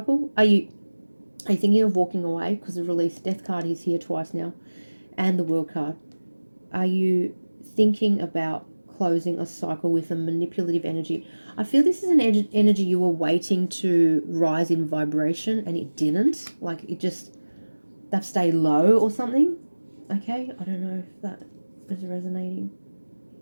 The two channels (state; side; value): inverted; both; correlation -1.00